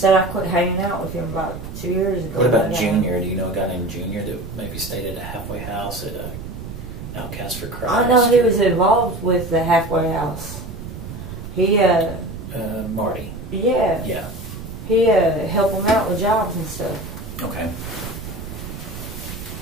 I quit hanging out with him about 2 years ago. What about Junior? Do you know a guy named Junior that maybe stayed at a halfway house at Outcast for Christ? I know he was involved with the halfway house. He Marty. Yeah. Yeah. He helped him out with jobs and stuff. Okay.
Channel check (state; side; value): noise; right; rumble, 10 dB below the sound